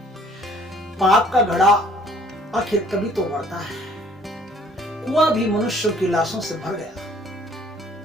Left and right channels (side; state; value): both; normal; correlation 0.58